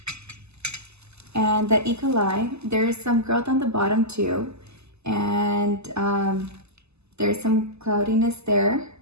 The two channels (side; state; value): left; late; 0.80 ms